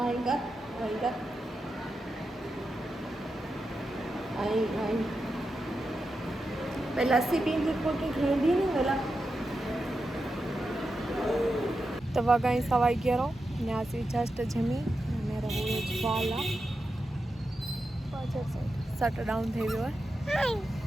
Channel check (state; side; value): normal; both; correlation 0.89